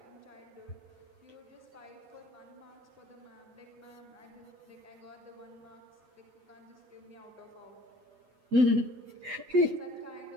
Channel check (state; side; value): late; left; 8.1 ms